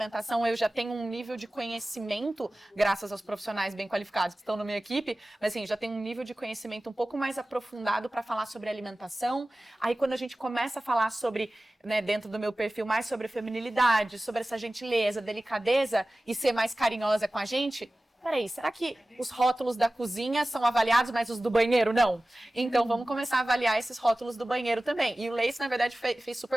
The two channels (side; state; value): both; normal; correlation 0.97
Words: eu já tenho um nível de conhecimento, graças aos profissionais bem qualificados que estão na minha equipe, mas assim, já tenho um nível de conhecimento um pouco mais aprofundado para falar sobre alimentação. Aí quando a gente começa a falar sobre, né, dentro do meu perfil, mais sobre feminilidade, sobre essa gentileza, delicadeza e ser mais carinhosa com a gente, peraí, será que os rótulos da cozinha são avaliados, mas os do banheiro não? Então vamos começar a avaliar esses rótulos do banheiro também. E o Lace, na verdade, fez